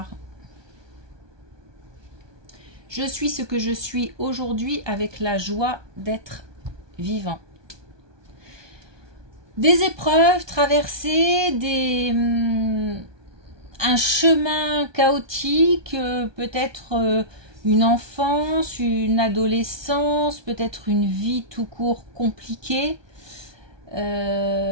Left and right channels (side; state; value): left; late; 1.2 ms